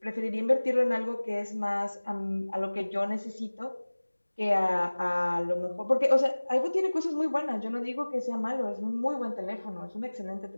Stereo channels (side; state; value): both; inverted; correlation -1.00